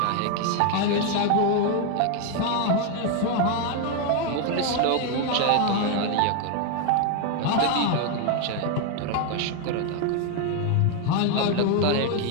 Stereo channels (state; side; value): different; both; correlation 0.01